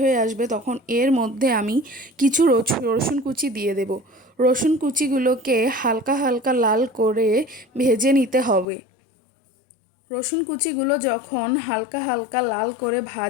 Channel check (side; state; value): right; drops out; at 8.7 s